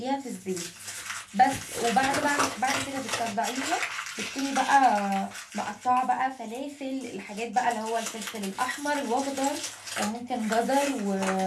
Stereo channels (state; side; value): identical; both; correlation 1.00